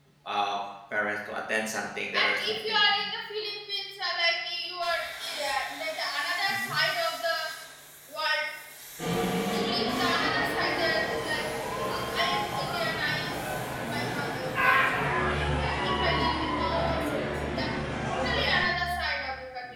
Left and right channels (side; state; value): both; identical; correlation 1.00